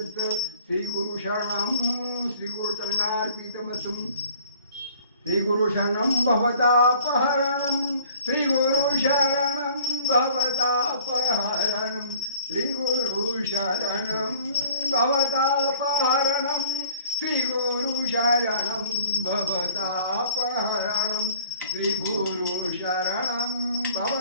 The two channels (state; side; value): inverted; both; correlation -0.55